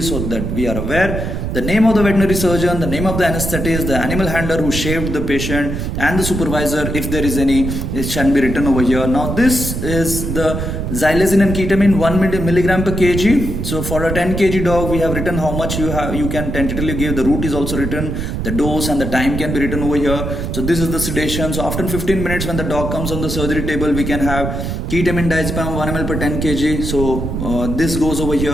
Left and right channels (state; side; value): noise; right; rumble, 3 dB below the sound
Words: so that we are aware. The name of the veterinary surgeon, the name of the anesthetist, the animal handler who shaved the patient, and the supervisor, if there is any, it shall be written over here. Now this is the xylazine and ketamine 1 milligram per kg. So for a 10 kg dog, we have written how much you can tentatively give. The route is also written, the dose and the time can be written over here. So this is the sedation. So after 15 minutes when the dog comes on the surgery table, we can have ketamine diazepam 1 ml per 10 kg. So this goes over